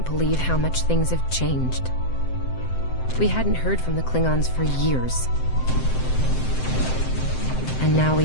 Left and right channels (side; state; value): right; late; 7.8 ms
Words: believe how much things have changed. We hadn't heard from the Klingons for years. And now